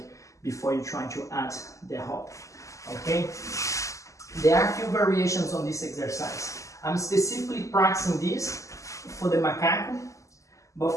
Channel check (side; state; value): right; late; 0.16 ms